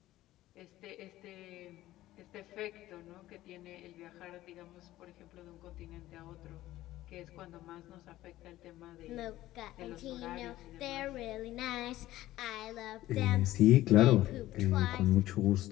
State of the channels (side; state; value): right; quieter; 15.4 dB